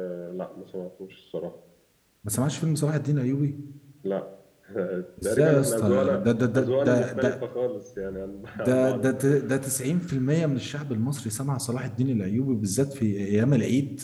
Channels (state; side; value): identical; both; correlation 1.00